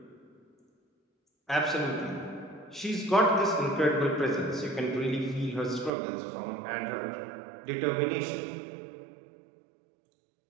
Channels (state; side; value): drops out; left; at 5.9 s